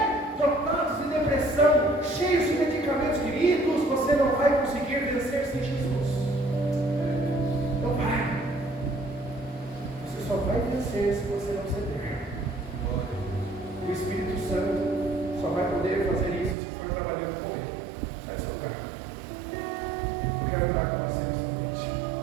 dotados de depressão, cheios de medicamentos. Queridos, você não vai conseguir vencer sem Jesus. Não vai. Você só vai vencer se você não ceder. O Espírito Santo só vai poder fazer isso se for trabalhando com Ele. Sai do seu lugar. Eu quero orar com você.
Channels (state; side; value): drops out; left; at 16.6 s